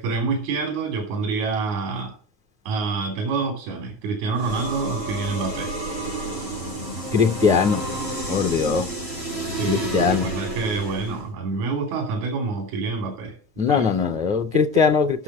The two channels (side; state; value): left; late; 9.5 ms